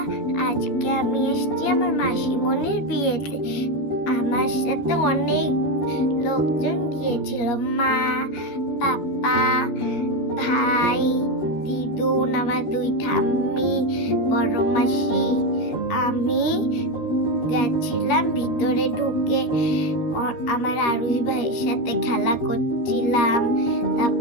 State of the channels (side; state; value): right; late; 13 ms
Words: আজকে আমি এসেছি আমার মাসিমণির বিয়েতে। আমার সাথে অনেক লোকজন গিয়েছিল, মা, পাপা, ভাই, দিদুন, আমার দুই ঠাম্মি, বড় মাসি। আমি গেছিলাম ভিতরে ঢুকে আমার আরুষ ভাইয়ের সাথে খেলা করছিলাম।